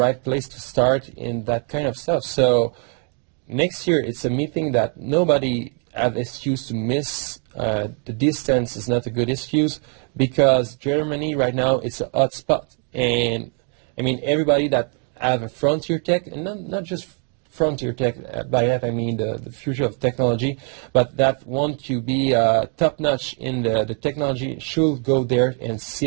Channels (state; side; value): quieter; left; 38.4 dB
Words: place to start in that kind of stuff. So next year, it's a meeting that nobody have excuse to miss. The distance is not a good excuse, because Germany right now is a hot spot. And I mean, everybody that have a frontier tech, and not just frontier tech, by that I mean the future of technology, but that want to be top-notch in the technology should go there and